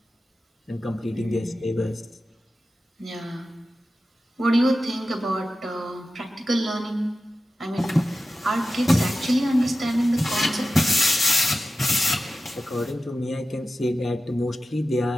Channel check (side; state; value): both; normal; correlation 0.93